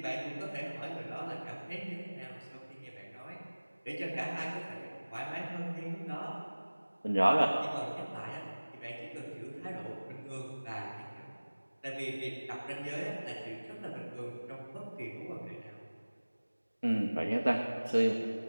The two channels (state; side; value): inverted; both; correlation -1.00